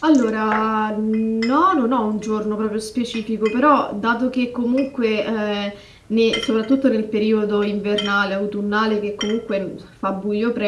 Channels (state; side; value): identical; both; correlation 1.00